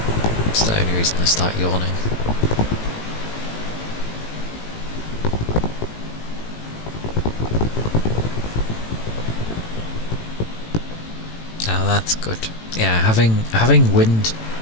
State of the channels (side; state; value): right; late; 18 ms